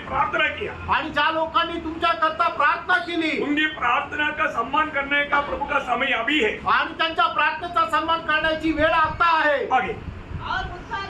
प्रार्थना किया, आणि ज्या लोकांनी तुमच्या करता प्रार्थना केली उनकी प्रार्थना का सम्मान करने का प्रभु का समय अभी है. आणि त्यांच्या प्रार्थनेचा सन्मान करण्याची वेळ आता आहे. आगे और उद्धार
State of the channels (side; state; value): both; identical; correlation 1.00